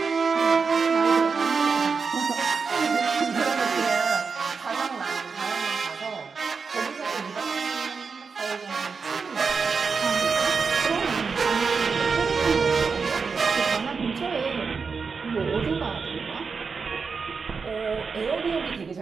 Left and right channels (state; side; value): quieter; left; 5.2 dB